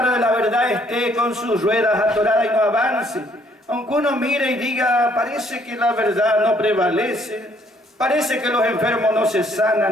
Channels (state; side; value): normal; both; correlation 0.65